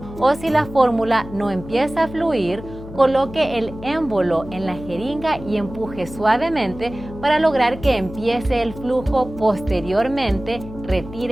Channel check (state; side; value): noise; left; hum, 14 dB below the sound